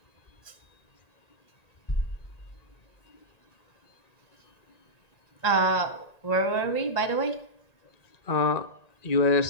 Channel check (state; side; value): late; right; 1.9 ms